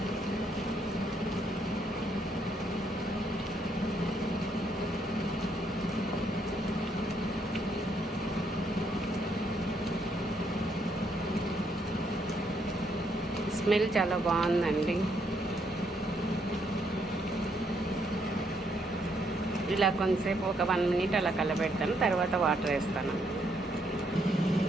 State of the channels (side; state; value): both; normal; correlation 0.73